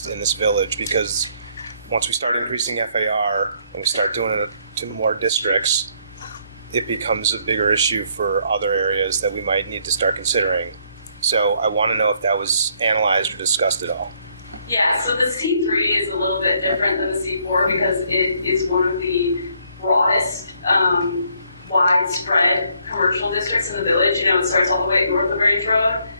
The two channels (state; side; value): inverted; both; correlation -0.68